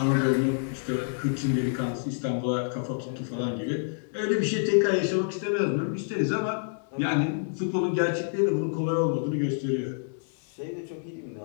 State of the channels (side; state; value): right; silent; digital silence